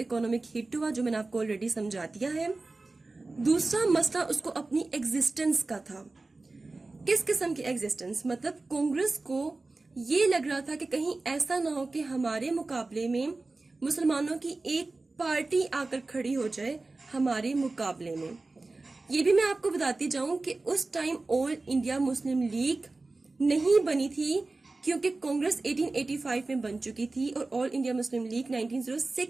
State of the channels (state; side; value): quieter; left; 3.3 dB